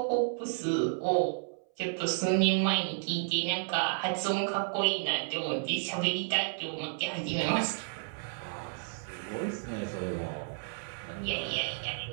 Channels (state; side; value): silent; left; 57 dB below the other